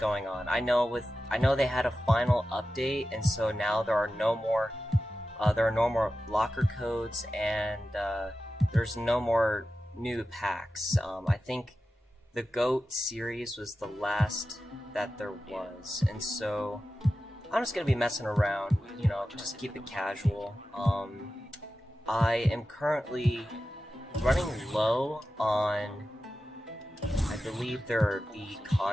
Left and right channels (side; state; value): both; normal; correlation 0.93